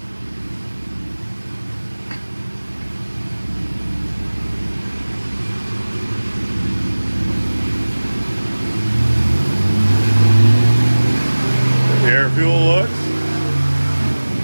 The air fuel looks.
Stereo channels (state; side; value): inverted; both; correlation -1.00